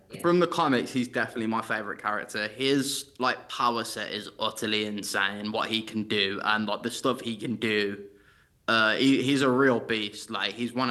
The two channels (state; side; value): identical; both; correlation 1.00